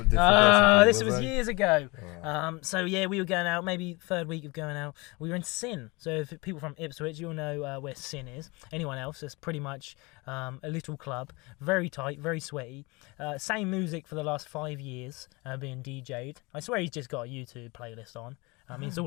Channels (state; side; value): quieter; right; 25.9 dB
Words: person. This was years ago. So yeah, we were going out, maybe 3rd week of going out. We were in Sin. So if people from Ipswich, you'll know where Sin is. Anyone else, it's pretty much a little club, very tight, very sweaty. Same music for the last 5 years, being DJ'd. I swear he's just got a YouTube playlist on. I mean, it's